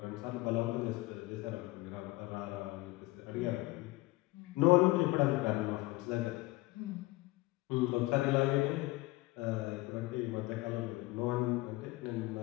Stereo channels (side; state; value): right; quieter; 20.6 dB